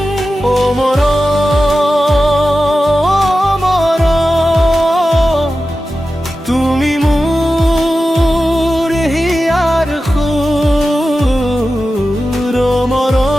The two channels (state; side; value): normal; both; correlation 0.93